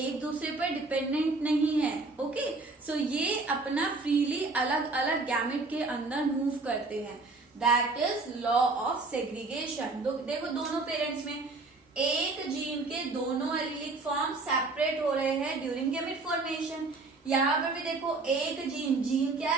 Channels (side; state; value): left; quieter; 3.5 dB